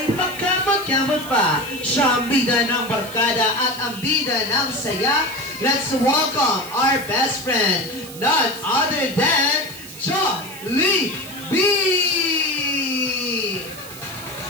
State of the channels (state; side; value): noise; right; hiss, 16 dB below the sound